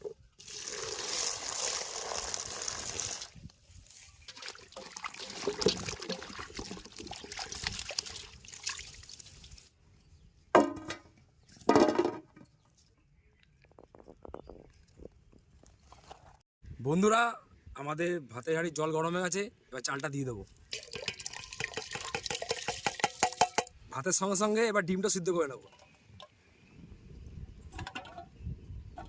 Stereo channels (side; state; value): both; identical; correlation 1.00